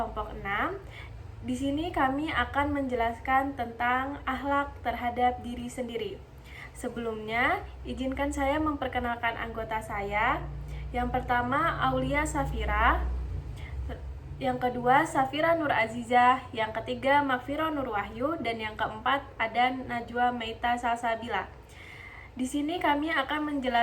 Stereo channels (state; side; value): identical; both; correlation 1.00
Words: 6. Di sini kami akan menjelaskan tentang akhlak terhadap diri sendiri. Sebelumnya, izinkan saya memperkenalkan anggota saya. Yang pertama, Aulia Safira. Yang kedua, Safira Nur Azizah. Yang ketiga, Makfiro Nur Wahyu. Dan yang keempat, ada Najwa Meita Salsabila. Di sini kami akan